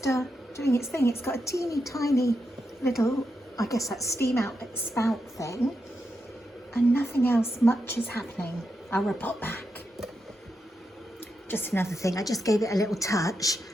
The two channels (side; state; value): both; normal; correlation 0.86